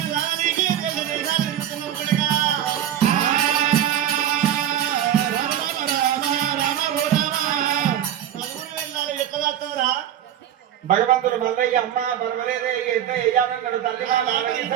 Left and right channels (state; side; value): quieter; left; 10.6 dB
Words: రానికి భగవంతుడు మల్లయ్య అమ్మ పర్వాలేదే ఎంత వేయాలన్నాడు తల్లి వాళ్ళ